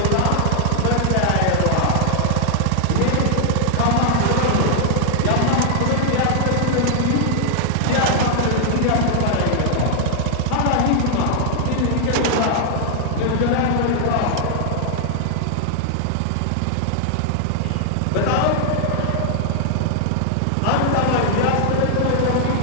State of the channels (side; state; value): both; different; correlation -0.01